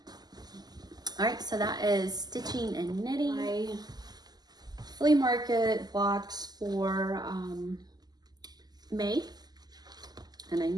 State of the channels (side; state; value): left; late; 0.20 ms